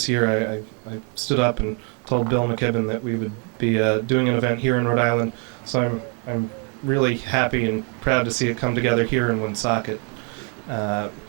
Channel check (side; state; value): left; quieter; 38.5 dB